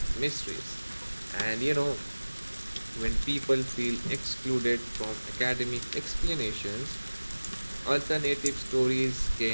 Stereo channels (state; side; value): inverted; both; correlation -1.00